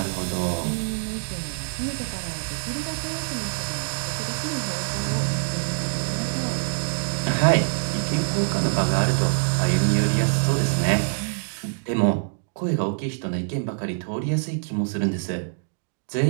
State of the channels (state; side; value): silent; left; digital silence